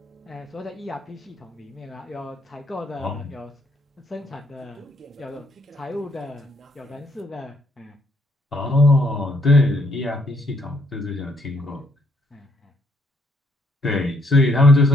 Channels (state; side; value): normal; both; correlation 0.70